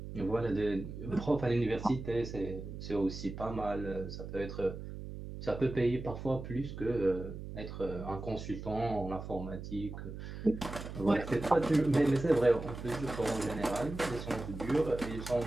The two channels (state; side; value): noise; right; hum, 9 dB below the sound